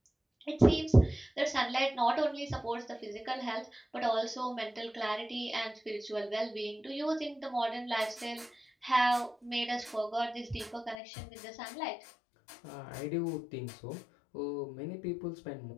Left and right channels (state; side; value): drops out; right; at 11.0 s